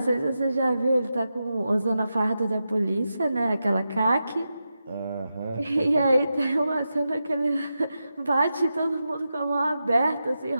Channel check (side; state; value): both; inverted; correlation -0.89